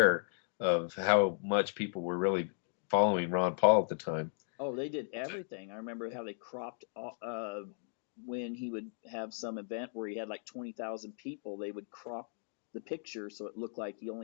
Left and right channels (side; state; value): right; silent; digital silence